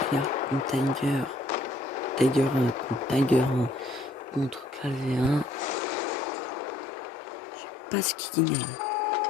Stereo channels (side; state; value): right; drops out; at 5.8 s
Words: Tiger 1 contre Tiger 1 contre Clavé 1. Je sais pas ce qui gagne.